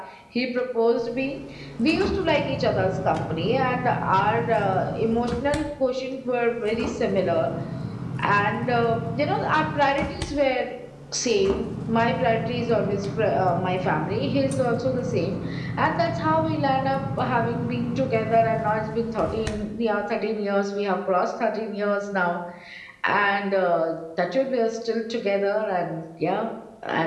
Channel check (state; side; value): identical; both; correlation 1.00